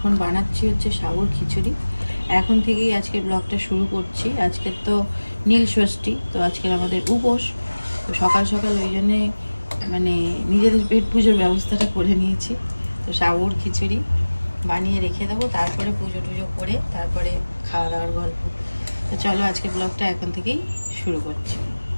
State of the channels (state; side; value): inverted; both; correlation -1.00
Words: বানাচ্ছি হচ্ছে সাবুর খিচুড়ি। এখন থেকেই আজকে ব্লগটা শুরু করছি। আজকের তো নীল ষষ্ঠী, তো আজকের আমাদের উপোস। তো সকাল সকাল ওই জন্যে মানে নিজেদের পেট পুজোর ব্যবস্থাটা করে নিয়েছি। তো সাবুর খিচুড়ি বানিয়ে রেখে দেবো, তারপরে পুজো টুজো করে তারপরে খাওয়া দাওয়ার গল্প। তো চলো আজকে ব্লগটা এখন থেকেই শুরু করছি।